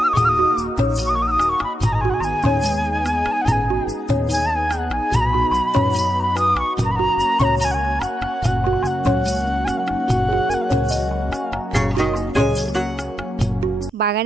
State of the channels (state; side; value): normal; both; correlation 0.87